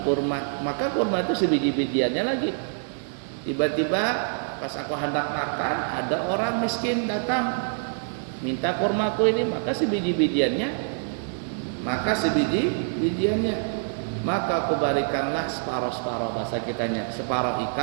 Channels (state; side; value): silent; left; digital silence